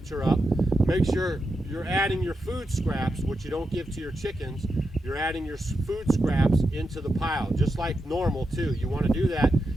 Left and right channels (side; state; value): both; normal; correlation 0.87